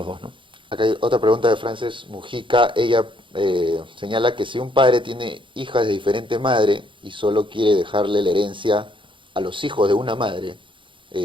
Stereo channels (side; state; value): left; late; 0.24 ms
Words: dos, ¿no? Acá hay otra pregunta de Frances Mujica. Ella señala que si un padre tiene hijas de diferente madre y solo quiere dejarle la herencia a los hijos de una madre,